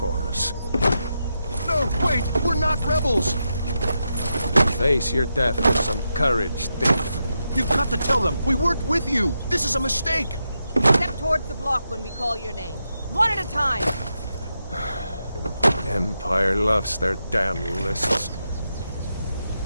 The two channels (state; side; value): inverted; both; correlation -0.86